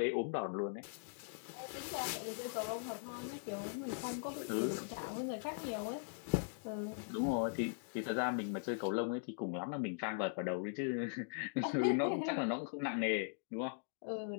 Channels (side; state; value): right; silent; digital silence